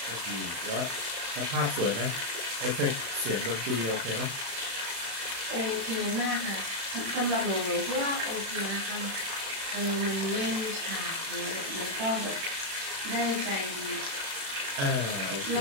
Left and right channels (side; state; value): left; late; 36 ms